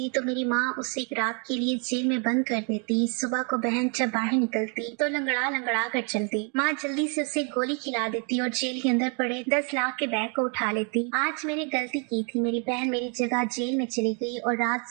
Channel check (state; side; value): quieter; left; 37.9 dB